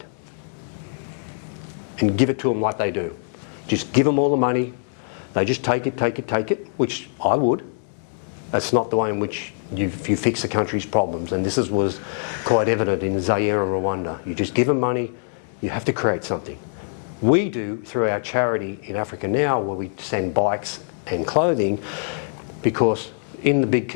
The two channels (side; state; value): right; silent; 63 dB below the other